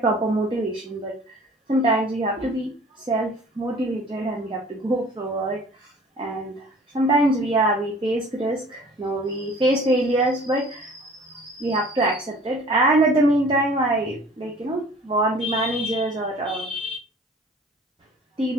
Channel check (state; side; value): normal; both; correlation 0.48